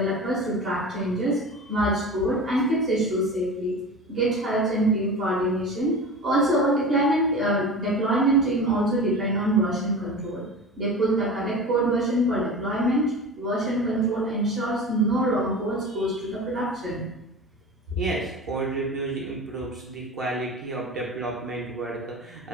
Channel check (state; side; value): normal; both; correlation 0.33